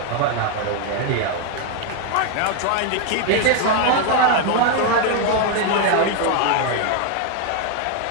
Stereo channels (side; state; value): both; different; correlation 0.01